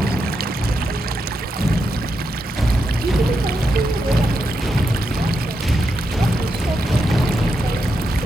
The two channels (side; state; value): both; normal; correlation 0.84